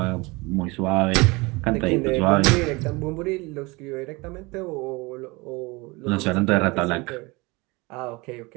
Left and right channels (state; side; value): quieter; left; 24.9 dB